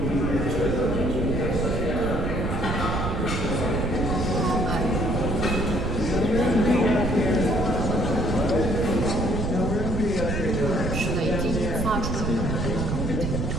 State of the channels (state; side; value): noise; right; rumble, 2 dB below the sound